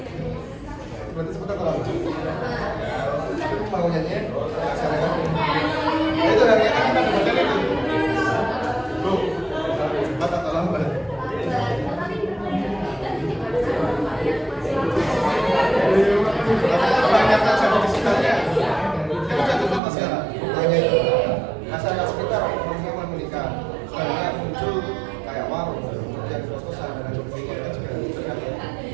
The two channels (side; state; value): left; drops out; at 19.8 s